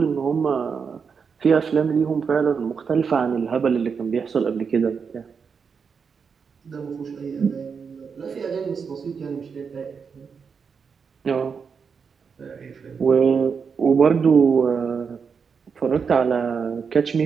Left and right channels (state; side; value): quieter; left; 5.9 dB